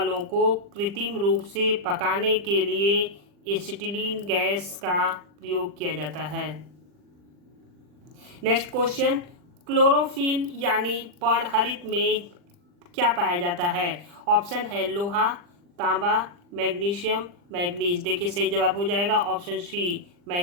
को कृत्रिम रूप से पकाने के लिए एसिटिलीन गैस का प्रयोग किया जाता है। नेक्स्ट क्वेश्चन, क्लोरोफिल यानी पर्णहरित में क्या पाया जाता है, ऑप्शन है लोहा, तांबा, मैग्नीशियम, मैग्नीज। देखिए सही जवाब हो जाएगा ऑप्शन सी,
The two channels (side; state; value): left; late; 40 ms